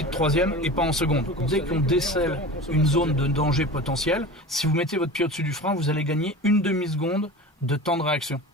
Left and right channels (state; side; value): normal; both; correlation 0.34